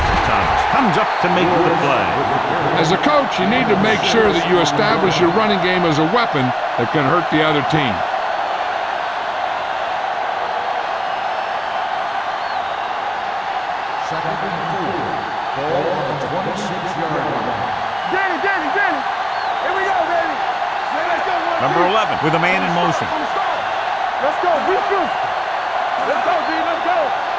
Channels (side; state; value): both; identical; correlation 1.00